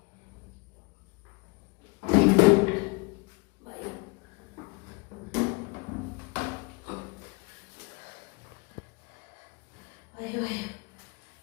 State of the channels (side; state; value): right; quieter; 28.9 dB